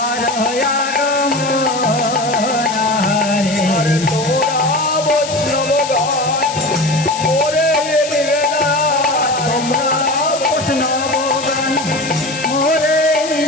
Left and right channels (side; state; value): left; noise; hiss, 9 dB below the sound